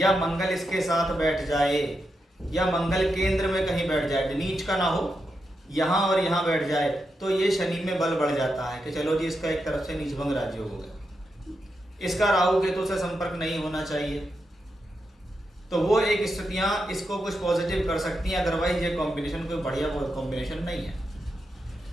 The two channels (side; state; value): both; normal; correlation 0.86